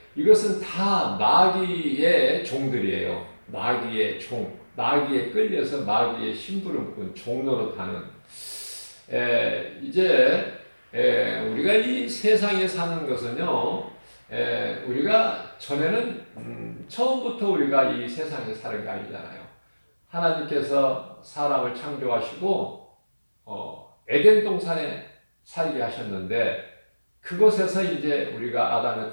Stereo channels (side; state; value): both; inverted; correlation -1.00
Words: 이것은 다 마귀의 종들이에요. 마귀의 종, 마귀에 끌려서 마귀의 심부름꾼, 종노릇하는 이제 우리가 이 세상에 사는 것은요, 우리가 전에는 처음부터 우리가 이 세상에 사는 게 아니잖아요. 하나님께서 사람을 창조하시고 에덴 동산에 살게 하셨는데 그곳에서 이제 우리가